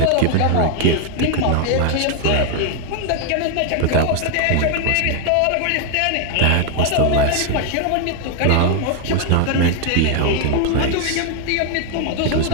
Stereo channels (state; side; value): different; both; correlation 0.01